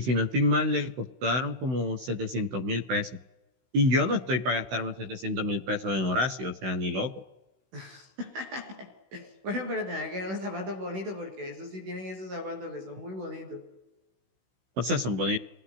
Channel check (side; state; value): left; late; 16 ms